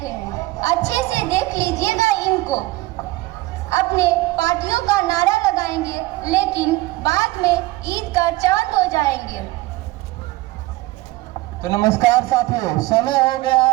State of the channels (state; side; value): quieter; left; 19.5 dB